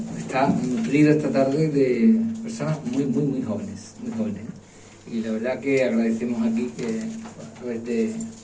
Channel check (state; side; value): identical; both; correlation 1.00